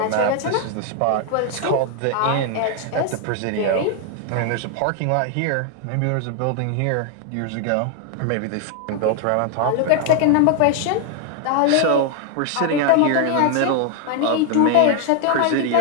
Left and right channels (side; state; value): both; different; correlation 0.00